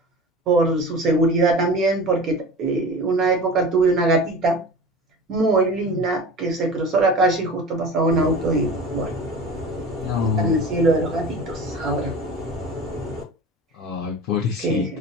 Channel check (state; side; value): normal; both; correlation 0.35